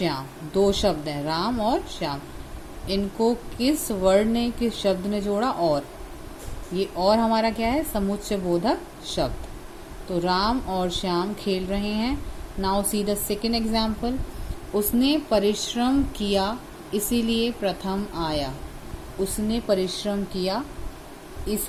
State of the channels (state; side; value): identical; both; correlation 1.00